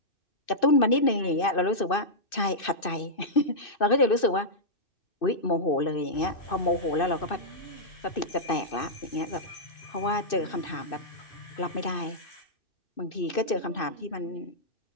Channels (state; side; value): late; right; 2.6 ms